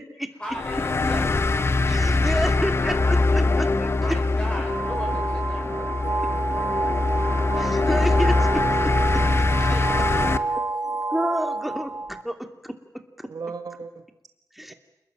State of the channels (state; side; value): normal; both; correlation 0.86